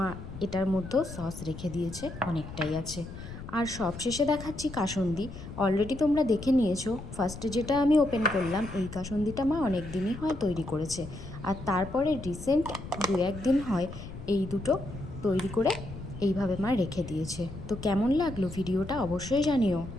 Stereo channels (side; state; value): left; noise; rumble, 11 dB below the sound